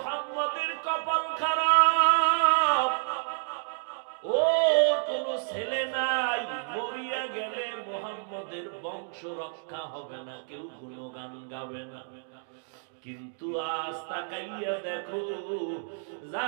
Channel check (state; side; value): silent; left; digital silence